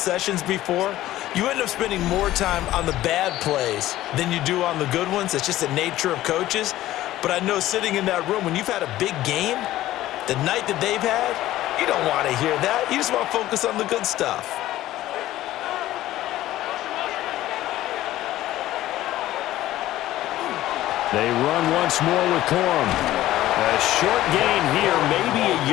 before. You end up spending more time on the bad plays than you do on the good ones. It's just the nature of coaches. But I know sitting in that room, when you've had a big game, the night that they've had, you don't want to hear that. You just want to focus on the good stuff. They run once more with Corum. A short gain here, maybe a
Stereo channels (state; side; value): quieter; right; 14.9 dB